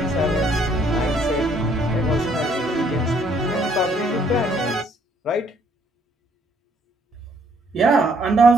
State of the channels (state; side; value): normal; both; correlation 0.66